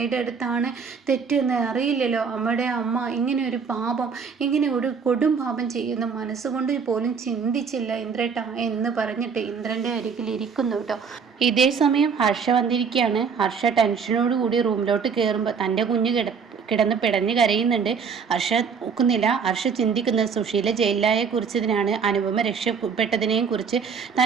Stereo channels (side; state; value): left; quieter; 6.0 dB